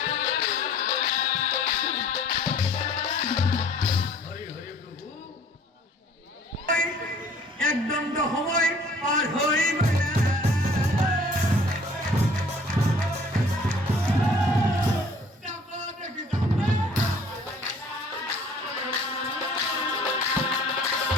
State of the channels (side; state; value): both; normal; correlation 0.54